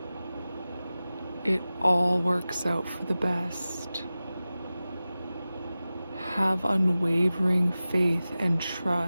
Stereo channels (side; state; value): both; inverted; correlation -0.96